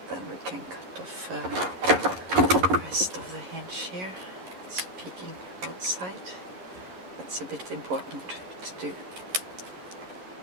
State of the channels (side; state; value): left; late; 11 ms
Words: then we can cut off the rest of the hinge here. It's peeking outside. That's a bit important to do.